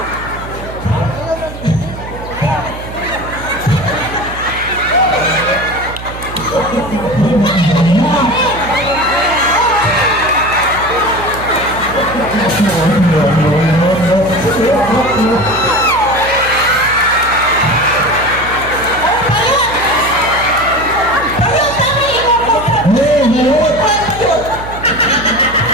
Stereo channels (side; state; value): right; noise; hum, 12 dB below the sound